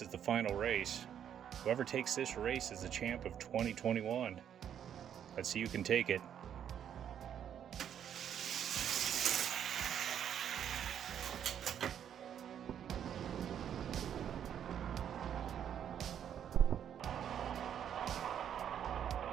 is the final race. Whoever takes this race is the champ of 2021. Let's see who can take it.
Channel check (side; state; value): left; quieter; 9.3 dB